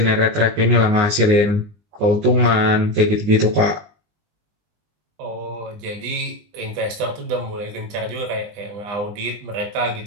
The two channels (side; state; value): left; late; 20 ms